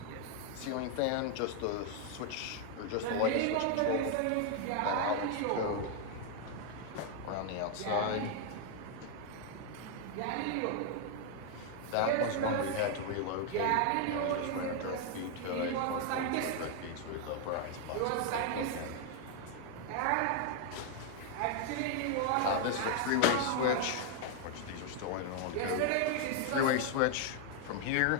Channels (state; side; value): different; both; correlation 0.00